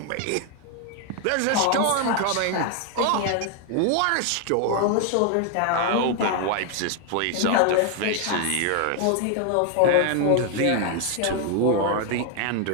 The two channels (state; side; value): different; both; correlation 0.01